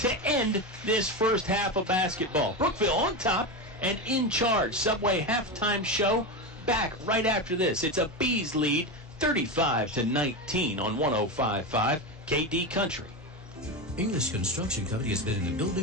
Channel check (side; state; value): both; normal; correlation 0.17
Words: end this first half of basketball. Brookville on top and in charge. Subway halftime show back right after this. It's a Bees lead, 35-19 on 105.5 KD Country. English Construction Company has been in the